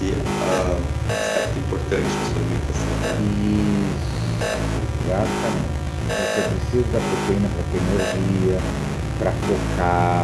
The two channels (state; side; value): identical; both; correlation 1.00